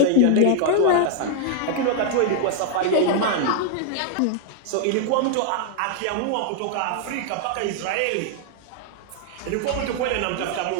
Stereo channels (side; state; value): both; different; correlation 0.00